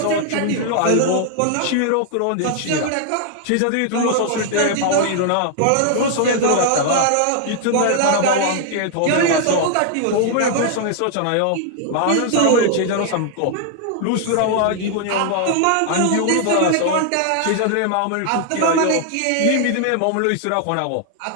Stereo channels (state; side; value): different; both; correlation 0.00